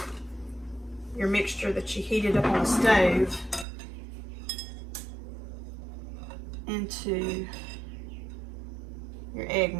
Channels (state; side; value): drops out; left; at 3.7 s